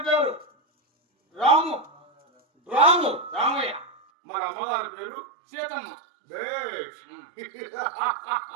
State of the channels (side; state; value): left; drops out; at 4.0 s